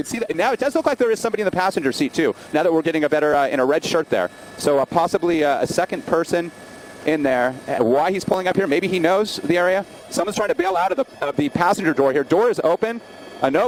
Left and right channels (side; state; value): both; identical; correlation 1.00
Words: see that now. It does look like there is somebody in the passenger seat too. Now that we're getting a better in a red shirt there, so possibly a second person in there. Why he's pulling up here? Maybe he knows the area. Someone's trying to bail out of the passenger door here. Door is open.